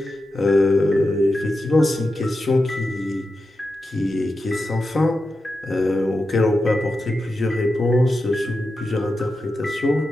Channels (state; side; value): normal; both; correlation 0.90